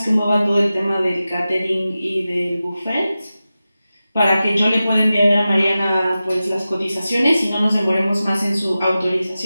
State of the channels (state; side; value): inverted; both; correlation -0.94